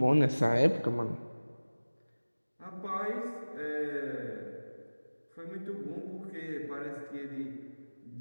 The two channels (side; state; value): both; inverted; correlation -1.00